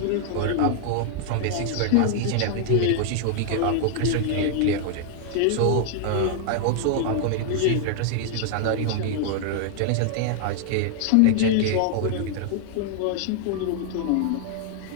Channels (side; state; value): both; different; correlation 0.00